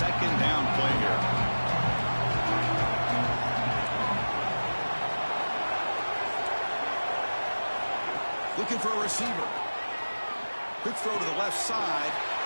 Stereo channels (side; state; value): both; inverted; correlation -1.00